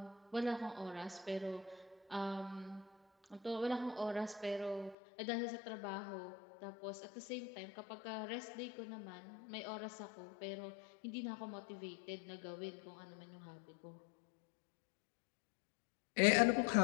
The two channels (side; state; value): right; drops out; at 5.0 s